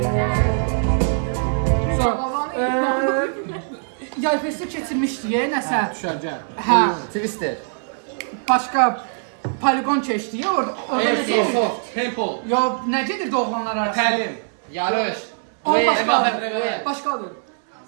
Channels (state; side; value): silent; left; digital silence